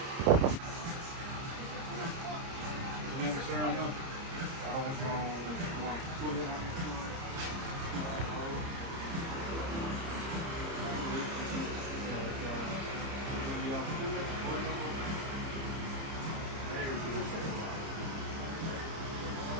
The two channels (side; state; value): left; late; 30 ms